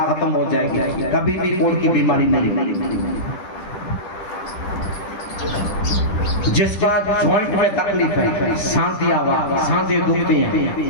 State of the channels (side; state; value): right; late; 10 ms